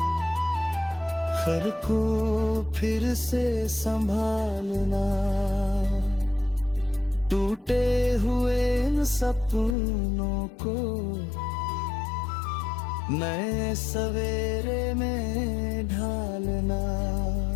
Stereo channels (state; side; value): drops out; right; at 9.8 s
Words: हर को फिर से संभालना। टूटे हुए इन सपनों को नए सवेरे में ढालना।